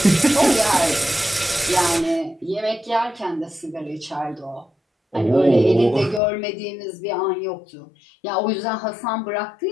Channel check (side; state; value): right; drops out; at 6.2 s